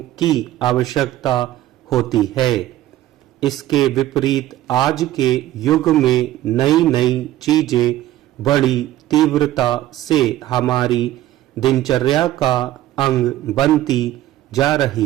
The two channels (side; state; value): left; quieter; 14.3 dB